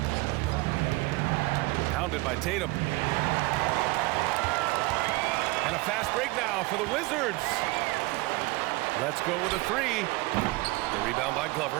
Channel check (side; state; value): left; quieter; 22.6 dB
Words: Pounded by Tatum. And a fast break now for the Wizards. Let's go with a 3. The rebound by